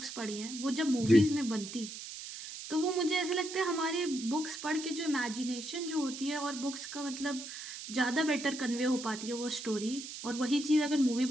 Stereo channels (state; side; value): noise; right; hiss, 10 dB below the sound